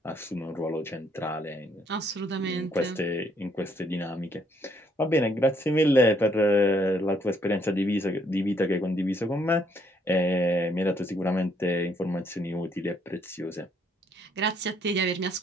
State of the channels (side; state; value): both; normal; correlation 0.68